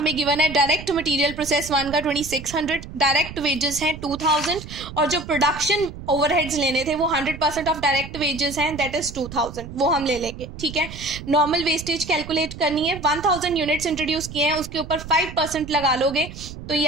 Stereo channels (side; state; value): right; noise; rumble, 12 dB below the sound